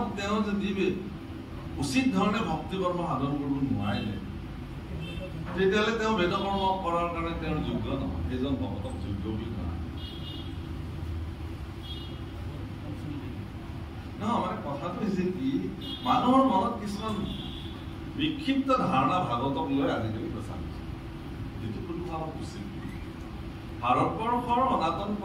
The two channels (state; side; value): identical; both; correlation 1.00